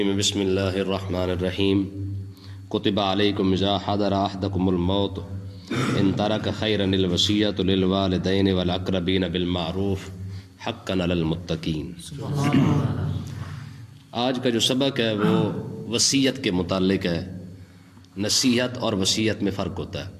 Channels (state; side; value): identical; both; correlation 1.00